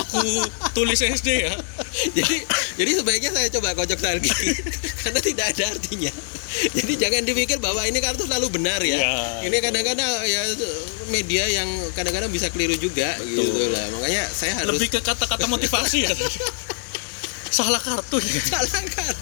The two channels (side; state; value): right; silent; 62 dB below the other